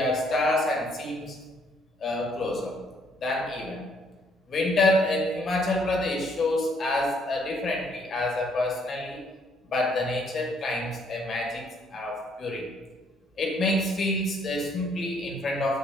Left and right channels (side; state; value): both; normal; correlation 0.67